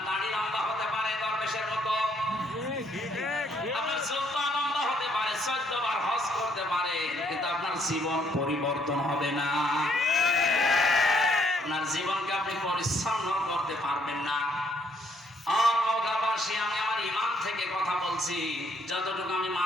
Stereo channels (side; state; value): both; normal; correlation 0.69